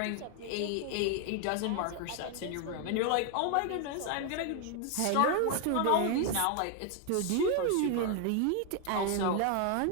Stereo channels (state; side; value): different; both; correlation 0.01